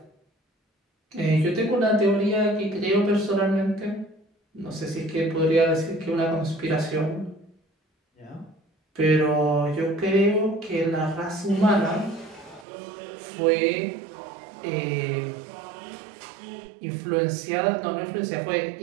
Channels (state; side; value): drops out; left; at 12.7 s